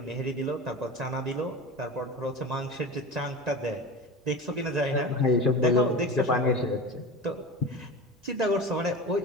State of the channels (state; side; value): normal; both; correlation 0.30